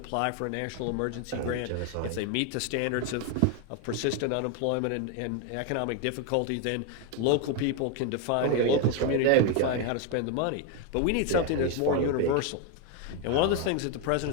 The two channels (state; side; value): different; both; correlation 0.01